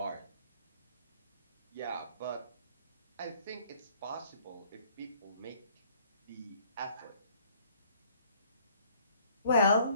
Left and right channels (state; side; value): inverted; both; correlation -0.58